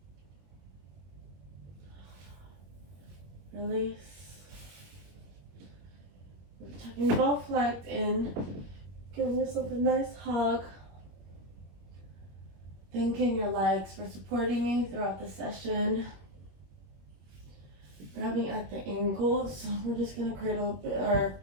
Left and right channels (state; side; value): late; left; 21 ms